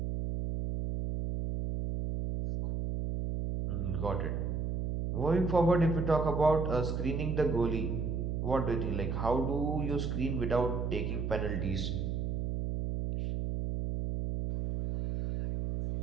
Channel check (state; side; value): noise; right; hum, 1 dB below the sound